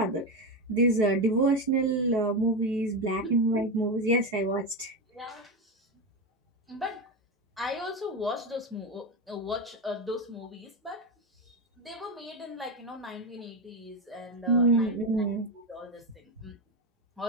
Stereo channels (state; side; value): normal; both; correlation 0.14